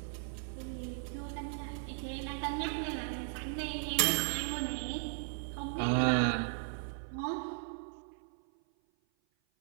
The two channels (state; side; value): silent; left; 53 dB below the other